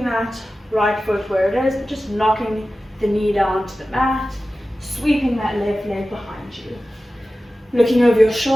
that right foot where it is, but just knocking the knee down to the mat, sweeping that left leg behind you. Looking over your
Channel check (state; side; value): normal; both; correlation 0.95